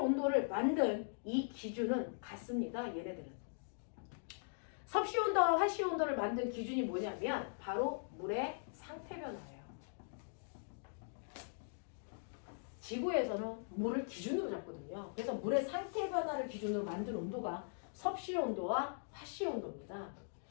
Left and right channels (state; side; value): silent; right; digital silence